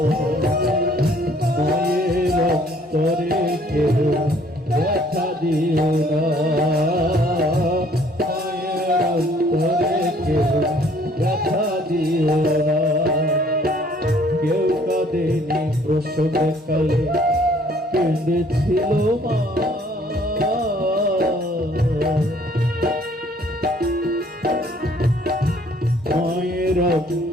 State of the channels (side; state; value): both; normal; correlation 0.60